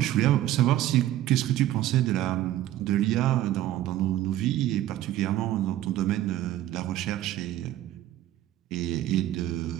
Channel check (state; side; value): quieter; left; 13.5 dB